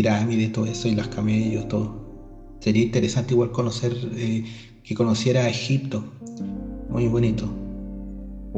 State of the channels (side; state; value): both; identical; correlation 1.00